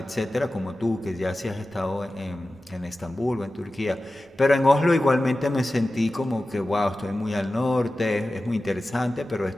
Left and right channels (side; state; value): both; normal; correlation 0.95